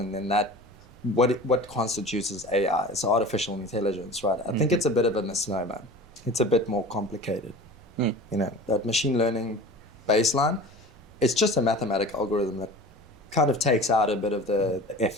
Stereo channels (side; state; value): both; normal; correlation 0.38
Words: then what constitutes as AI is artificial intelligence, right? I think it's a bit of a misnomer. It's a bit more complicated. That machine learning baseline, it's just a mathematical algorithm that kind of takes out a bit of the